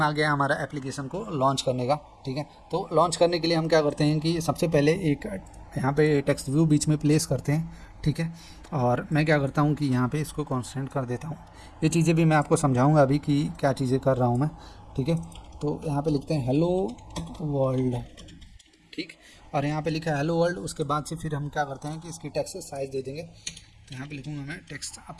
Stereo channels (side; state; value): both; identical; correlation 1.00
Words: आ गया हमारा एप्लीकेशन को लॉन्च करने का, ठीक है। तो लॉन्च करने के लिए हम क्या करते हैं कि सबसे पहले एक यहाँ पे टेक्स्ट व्यू बीच में प्लेस करते हैं, ठीक है। और मैं क्या करता हूँ कि यहाँ पे इसको कॉन्स्टेंट कर देता हूँ। ये चीज़ें भी मैं आपको समझाऊँगा अभी कि क्या चीज़ें कर रहा हूँ मैं, ठीक है। तो यहाँ पे लिखते हैं हेलो वर्ल्ड, ठीक। और यहाँ पे लिखा है हेलो वर्ल्ड। उसके बाद से फिर हम क्या करते हैं कि इसकी टेक्स्ट साइज़ दे देंगे। तो यहाँ पे लिखूँगा मैं टेक्स्ट